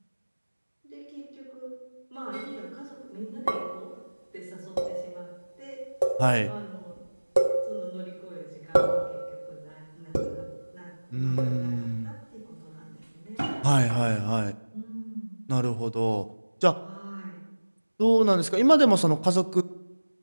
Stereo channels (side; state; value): both; inverted; correlation -1.00